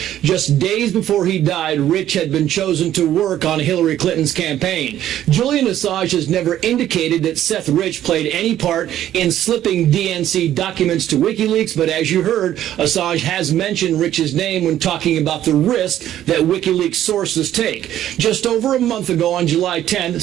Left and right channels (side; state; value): left; quieter; 12.0 dB